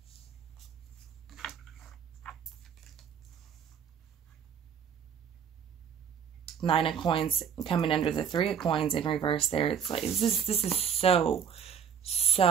Nine of Coins coming under the 3 of Coins in reverse there. It's like, this is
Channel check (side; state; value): left; quieter; 7.7 dB